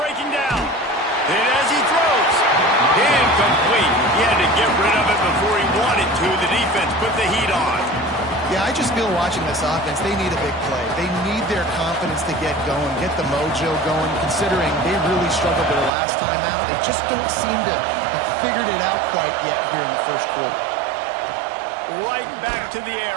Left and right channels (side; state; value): left; drops out; at 15.9 s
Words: down. And as he throws, incomplete. He had to get rid of it before he wanted to. The defense put the heat on. Yeah, I just feel watching this offense, they need a big play. They need their confidence to get going, get the mojo going, considering they really struggled their last time out. They just don't seem to have figured it out quite yet here in the first quarter. Right back to the air